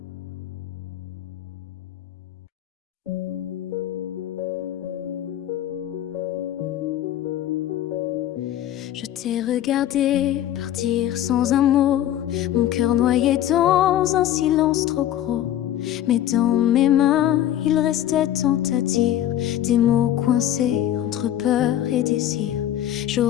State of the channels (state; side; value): quieter; right; 12.0 dB